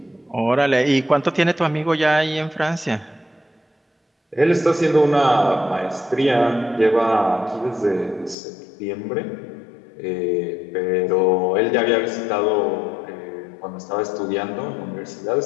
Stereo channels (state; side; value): drops out; right; at 8.3 s